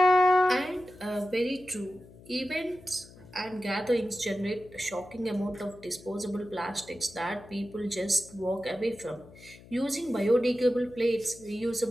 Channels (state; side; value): noise; left; hum, 21 dB below the sound